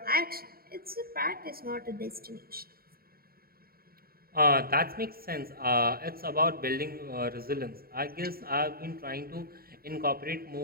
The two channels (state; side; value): late; left; 0.44 ms